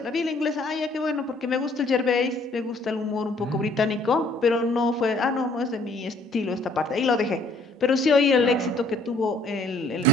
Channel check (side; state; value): both; normal; correlation 0.61